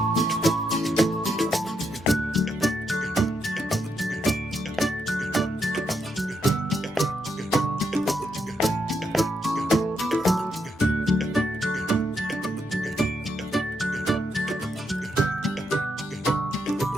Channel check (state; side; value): normal; both; correlation 0.80